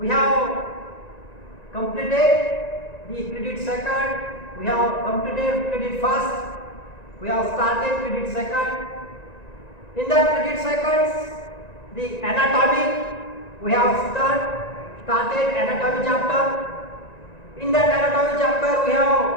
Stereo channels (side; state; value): right; late; 1.9 ms